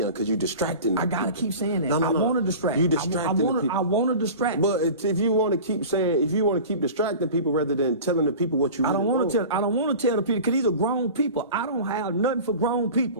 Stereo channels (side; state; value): both; inverted; correlation -0.36